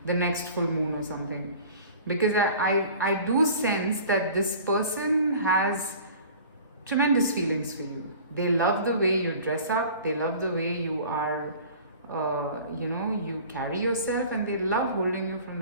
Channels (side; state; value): both; inverted; correlation -0.44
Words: the next full moon or something. Because I do sense that this person has tremendous feelings for you. They love the way you dress up, they love the way you are, you carry yourself, and they love holding you from